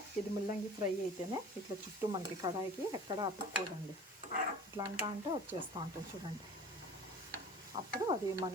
ఇది ముల్లంగి ఫ్రై అయితేనే ఇట్లా చుట్టూ మనకి కడాయికి ఎక్కడ అతుక్కోదండి. ఇట్లా అంటే వచ్చేస్తూ ఉంటుంది చూడండి. అప్పుడు అది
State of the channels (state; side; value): normal; both; correlation 0.42